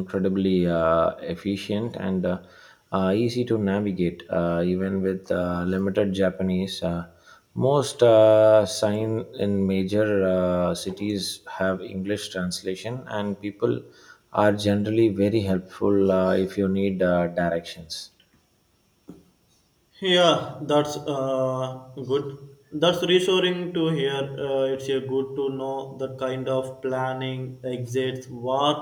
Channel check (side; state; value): both; identical; correlation 1.00